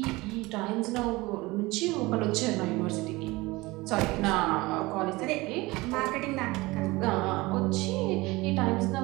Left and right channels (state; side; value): quieter; left; 21.6 dB